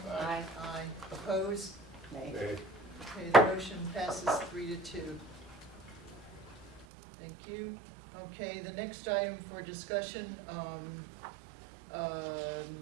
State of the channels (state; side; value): drops out; left; at 6.9 s